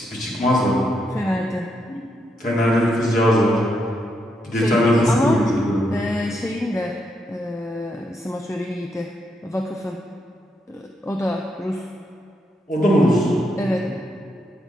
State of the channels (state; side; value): normal; both; correlation 0.80